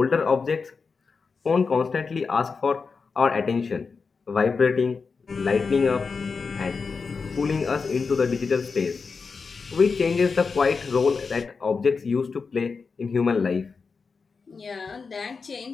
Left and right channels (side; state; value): right; quieter; 4.9 dB